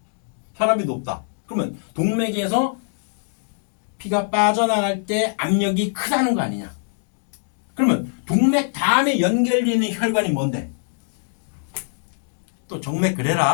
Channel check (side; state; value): right; silent; digital silence